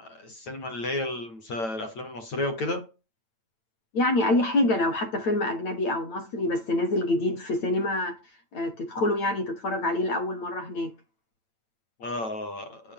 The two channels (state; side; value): late; right; 9.0 ms